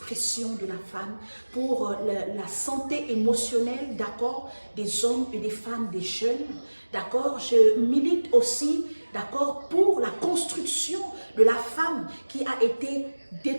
de la femme, pour la santé émotionnelle, d'accord, des hommes et des femmes, des jeunes, d'accord? Je milite aussi, d'accord, pour la construction de la femme qui a été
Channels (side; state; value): both; inverted; correlation -1.00